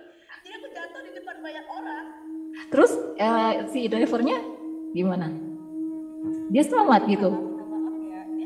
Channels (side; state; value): both; identical; correlation 1.00